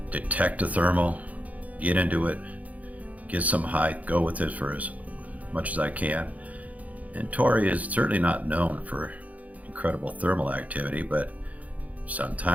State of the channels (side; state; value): left; late; 0.072 ms